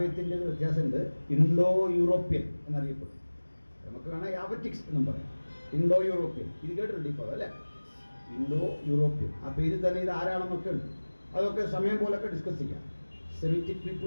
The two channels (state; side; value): inverted; both; correlation -1.00